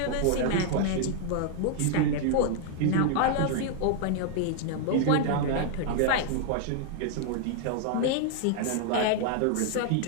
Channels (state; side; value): different; both; correlation 0.00